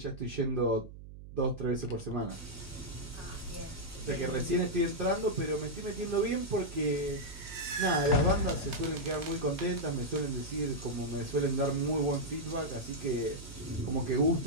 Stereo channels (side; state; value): right; noise; hum, 14 dB below the sound